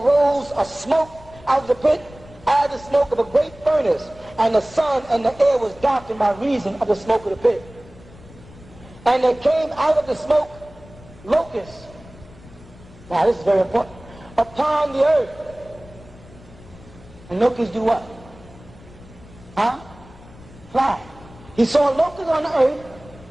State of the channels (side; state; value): left; noise; rumble, 21 dB below the sound